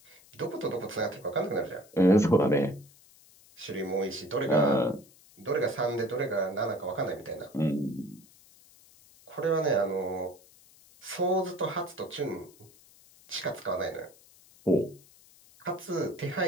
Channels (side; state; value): left; noise; hiss, 26 dB below the sound